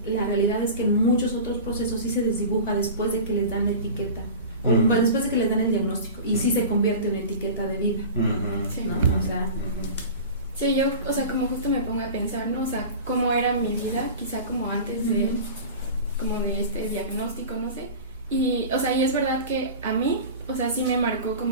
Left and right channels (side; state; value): both; inverted; correlation -0.34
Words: la realidad es que en muchos otros procesos sí se desdibuja después de que les dan la etiqueta, o después de que les dan el diagnóstico, y sí se convierte en etiqueta de vida. Sí. ¿No? O sea, sí, yo, o sea, como justo me pongo a pensar, ¿no? O sea, cómo era mi vida, quizá como antes de este diagnóstico, no sé. Y, o sea, y es verdad que a mí, o sea, sí me marcó